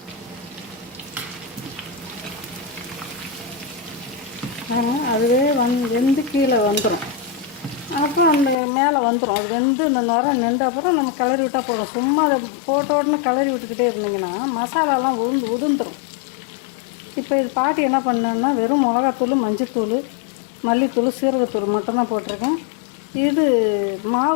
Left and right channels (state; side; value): drops out; right; at 8.6 s